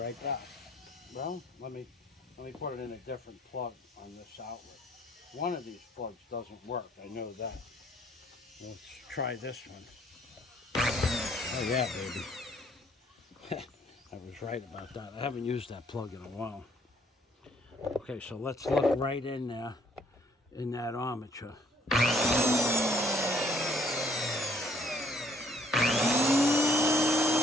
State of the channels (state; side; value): normal; both; correlation 0.63